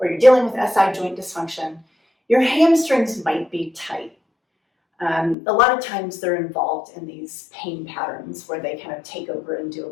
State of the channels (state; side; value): drops out; right; at 5.4 s